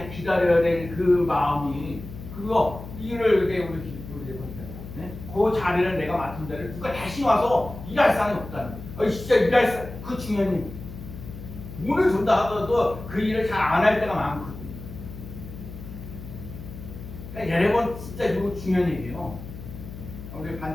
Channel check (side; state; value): left; noise; hum, 12 dB below the sound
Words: 기다려야 될 그 마음이 그거 일을 그때 우리 네? 그 자리를 내가 맡은 자리를 누가 다시 와서 일할 사람이 없다는 거예요. 진짜 일할 사람 그 중요한 일 돈을 준다 하더라도 그 일을 잘 안 할 때가 많거든요. 그러니까 여러분 진짜 이거 중요한 얘기예요. 우리